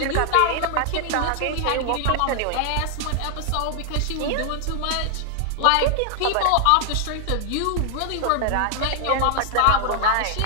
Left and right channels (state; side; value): different; both; correlation 0.00